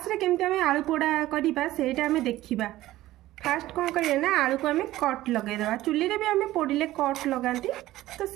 रे केमते आमे आलू पोड़ा करबा सेटा आमे देखिबा। फास्ट कौन करिए ना, आलू को आमे कट लगे देबा। चुल्ली रे भी आमे पोड़िले कट लगांती, तो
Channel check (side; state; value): left; quieter; 15.8 dB